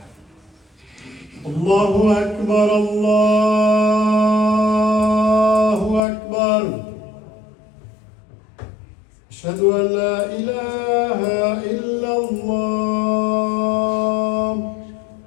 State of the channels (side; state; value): right; drops out; at 6.0 s